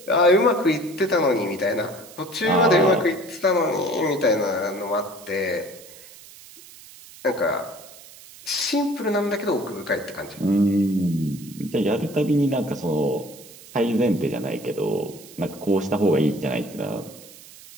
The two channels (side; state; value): right; noise; hiss, 19 dB below the sound